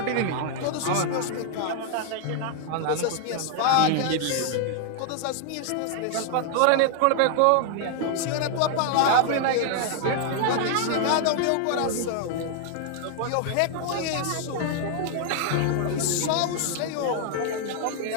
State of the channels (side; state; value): both; different; correlation 0.00